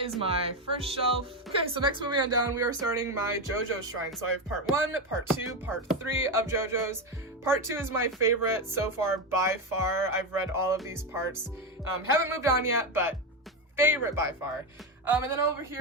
is my first shelf. Okay, so next, moving on down, we are starting my JoJo shrine. So I have part 1, part 2, part 3 of JoJo's. Part 2 is my favorite so far by far. I've read all of these parts. Haven't moved on yet, but favorite by far. And then over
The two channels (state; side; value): normal; both; correlation 0.12